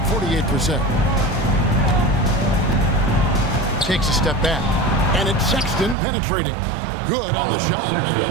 48%. Takes a step back, and it's Sexton penetrating. Good on the shot.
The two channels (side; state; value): left; drops out; at 6.0 s